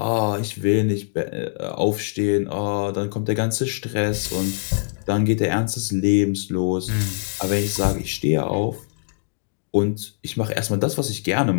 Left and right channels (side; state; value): right; silent; digital silence